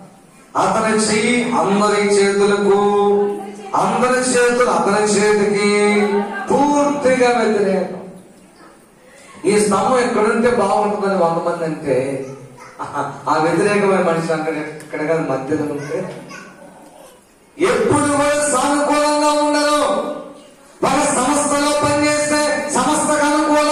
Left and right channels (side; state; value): both; identical; correlation 1.00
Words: అతని చెయ్యి అందరి చేతులకు, అందరి చేతులు అతని చేతికి పూర్తిగా వ్యతిరేకం. ఈ స్తంభం ఎక్కడుంటే బాగుంటుందని 100 మంది అంటే ఆ వ్యతిరేకమైన మనిషి అక్కడ ఇక్కడ కాదు మధ్యలో ఉంటే ఎప్పుడు కూడా సానుకూలంగా ఉండరు. ఒక సంస్థలో పనిచేస్తే సంస్థకు